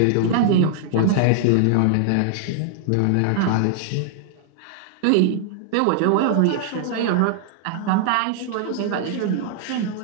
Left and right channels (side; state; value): both; different; correlation -0.01